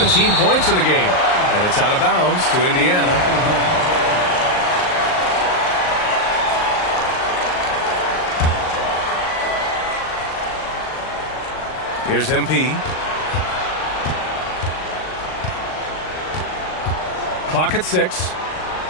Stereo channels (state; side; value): late; right; 38 ms